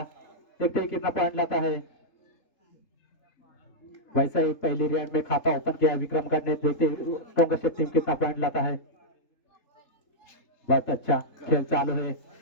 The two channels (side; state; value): right; late; 3.8 ms